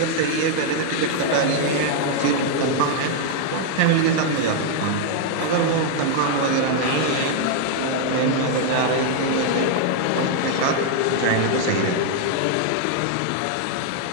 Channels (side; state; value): both; different; correlation 0.00